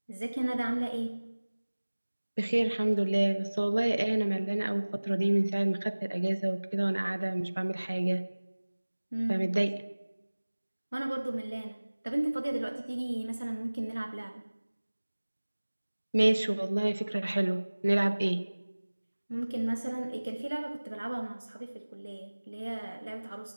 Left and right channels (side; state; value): both; inverted; correlation -1.00